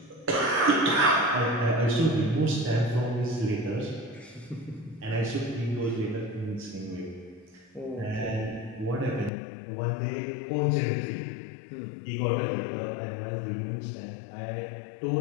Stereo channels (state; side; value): drops out; right; at 9.3 s